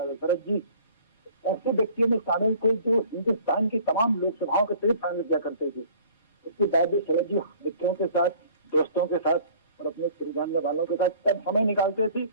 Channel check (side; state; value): both; inverted; correlation -0.51